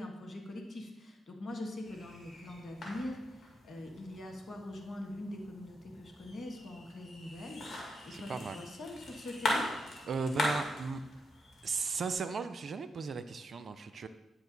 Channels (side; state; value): both; normal; correlation 0.82